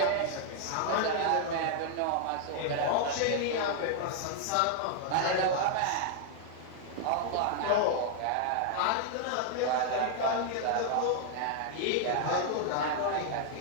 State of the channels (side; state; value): both; different; correlation 0.00